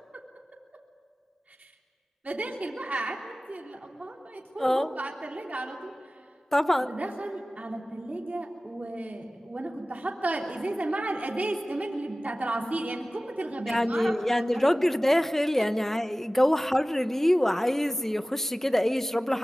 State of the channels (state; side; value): normal; both; correlation 0.97